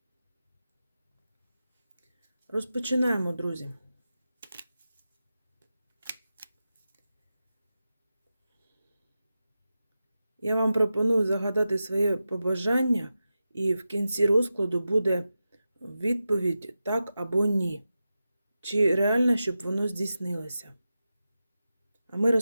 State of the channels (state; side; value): inverted; both; correlation -0.92